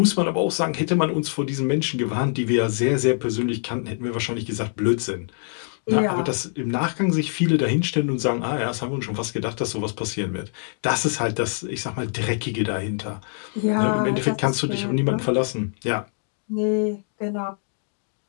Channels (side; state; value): right; silent; 62 dB below the other